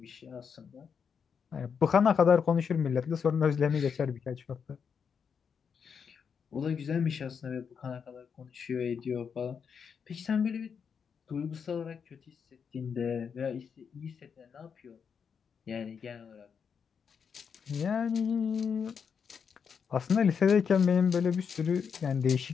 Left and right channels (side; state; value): right; quieter; 6.6 dB